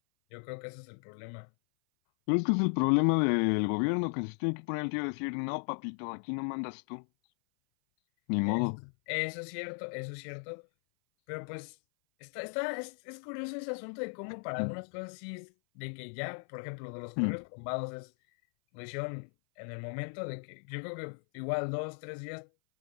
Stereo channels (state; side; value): silent; right; 54 dB below the other